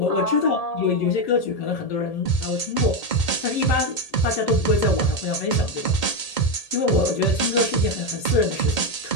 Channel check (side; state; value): right; late; 1.8 ms